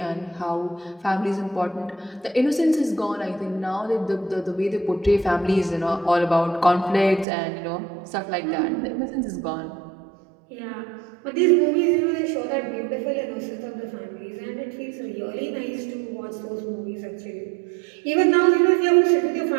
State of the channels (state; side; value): drops out; left; at 7.2 s